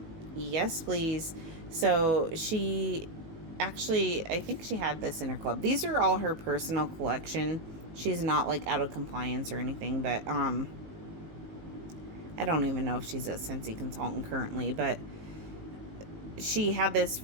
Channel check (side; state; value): left; late; 19 ms